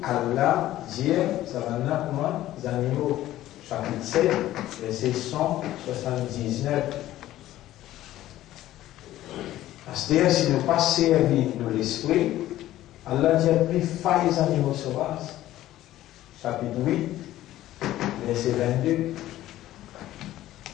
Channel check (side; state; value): right; quieter; 14.3 dB